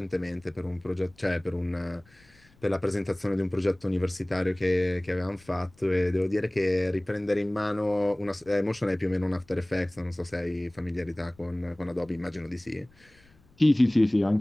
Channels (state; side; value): noise; left; rumble, 29 dB below the sound